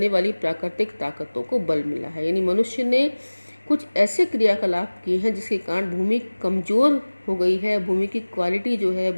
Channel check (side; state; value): both; inverted; correlation -1.00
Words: वाली प्राकृतिक ताकतों को बल मिला है। यानी मनुष्य ने कुछ ऐसे क्रियाकलाप किए हैं जिसके कारण भूमि कमजोर हो गई है। भूमि की क्वालिटी जो है,